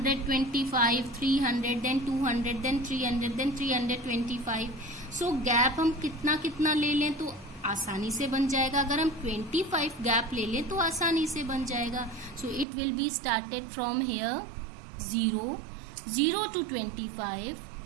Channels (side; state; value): left; drops out; at 12.7 s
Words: 300, then 200, then 300, then 325. So gap हम कितना कितना ले लें तो आसानी से बन जाएगा. अगर हम 25 गैप ले लें तो आसानी से बन जाएगा. So it will be started from here 0 to 25,